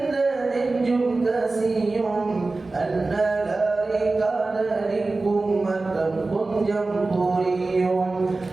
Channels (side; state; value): left; quieter; 3.4 dB